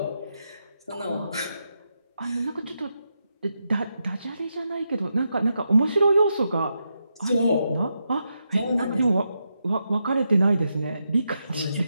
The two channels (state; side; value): inverted; both; correlation -0.85